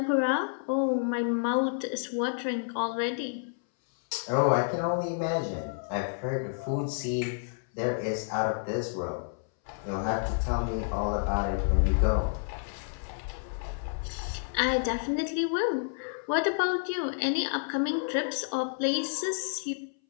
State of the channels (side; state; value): right; silent; 58 dB below the other